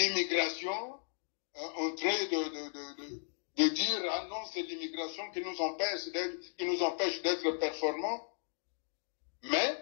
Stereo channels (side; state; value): right; silent; digital silence